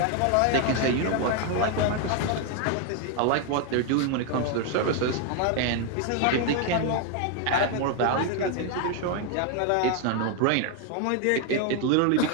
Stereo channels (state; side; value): different; both; correlation 0.01